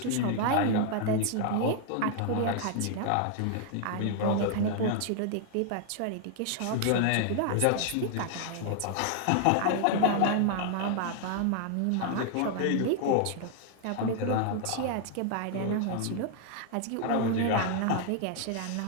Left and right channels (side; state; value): both; different; correlation 0.00